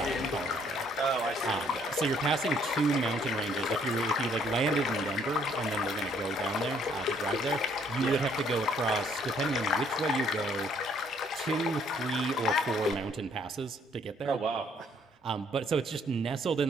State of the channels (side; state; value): both; normal; correlation 0.65